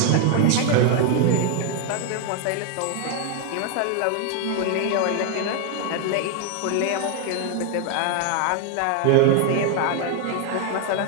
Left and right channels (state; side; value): different; both; correlation 0.00